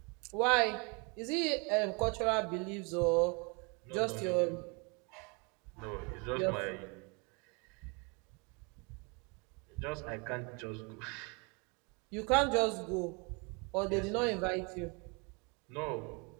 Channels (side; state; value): left; quieter; 31.8 dB